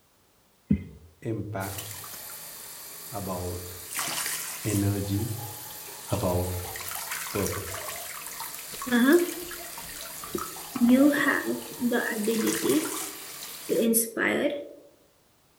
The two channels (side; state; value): both; identical; correlation 1.00